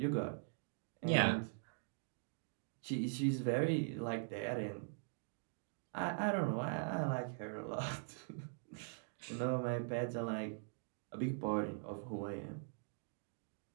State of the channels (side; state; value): left; silent; digital silence